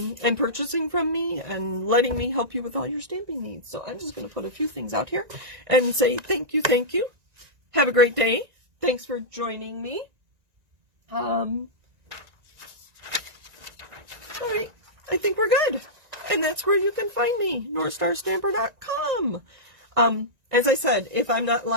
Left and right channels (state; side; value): late; left; 1.9 ms